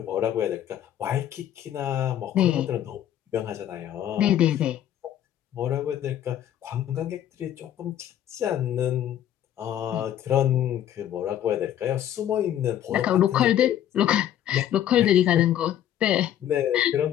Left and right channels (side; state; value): right; quieter; 11.1 dB